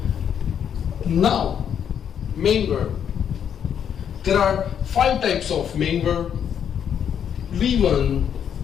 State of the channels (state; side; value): quieter; right; 8.5 dB